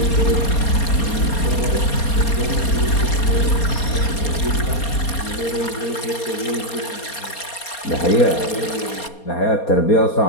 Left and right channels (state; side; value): late; right; 4.3 ms